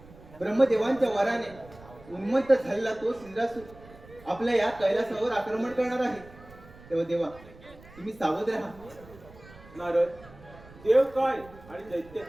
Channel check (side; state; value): right; noise; rumble, 21 dB below the sound